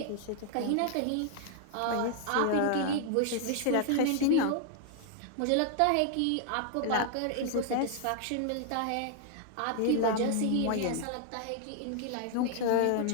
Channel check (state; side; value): different; both; correlation 0.00